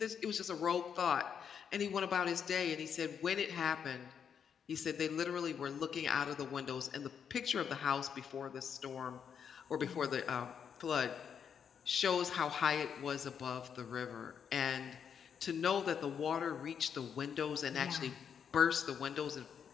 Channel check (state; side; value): quieter; right; 7.5 dB